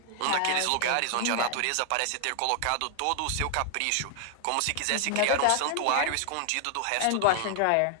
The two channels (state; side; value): different; both; correlation 0.00